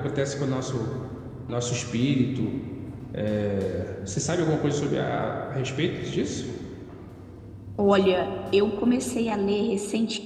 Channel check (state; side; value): identical; both; correlation 1.00